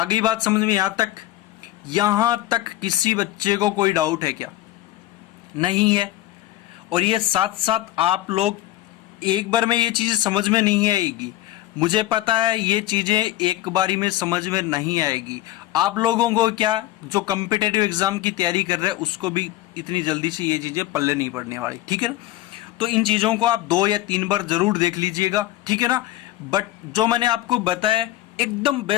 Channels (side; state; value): right; quieter; 15.6 dB